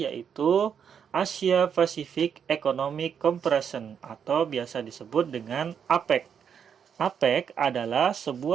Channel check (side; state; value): left; quieter; 7.6 dB